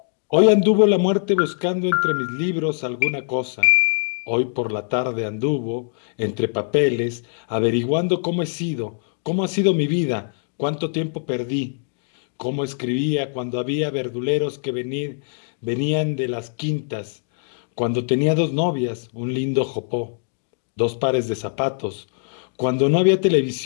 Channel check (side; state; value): right; silent; digital silence